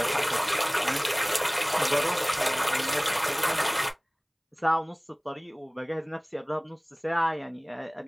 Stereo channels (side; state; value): both; identical; correlation 1.00